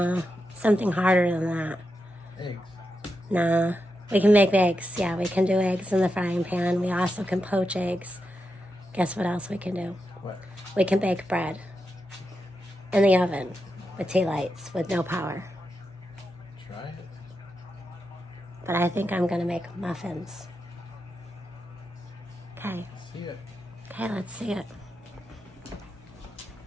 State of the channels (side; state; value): both; normal; correlation 0.87